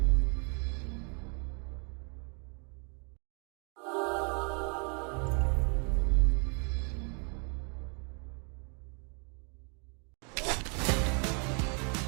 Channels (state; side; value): quieter; left; 37.8 dB